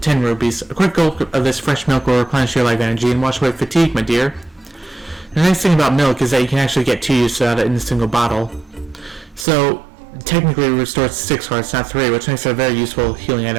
10 rupees. A quick gulp of this fresh milk will replenish your life energy and wash away fatigue, my dear. The nice thing about milk is that you can actually get 2 uses out of it in a single bottle. So technically it restores 6 hearts, not 3, which makes it a very useful healing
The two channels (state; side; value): drops out; left; at 9.5 s